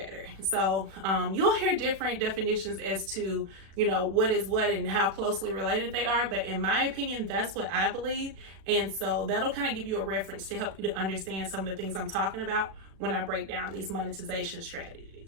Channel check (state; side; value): late; left; 36 ms